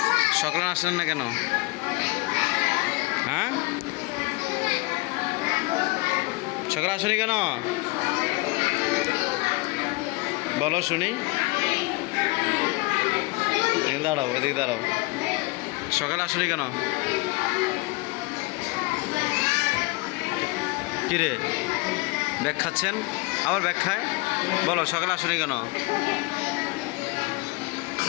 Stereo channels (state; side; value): quieter; right; 25.1 dB